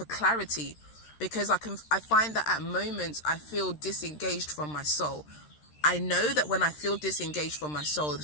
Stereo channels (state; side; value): late; right; 13 ms